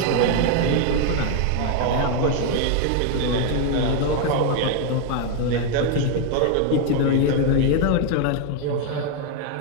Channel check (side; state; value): both; different; correlation 0.00